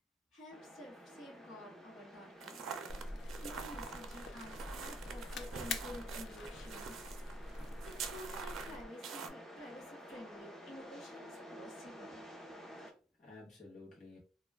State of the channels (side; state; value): both; normal; correlation 0.64